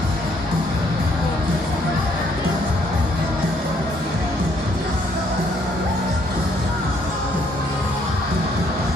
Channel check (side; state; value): both; normal; correlation 0.67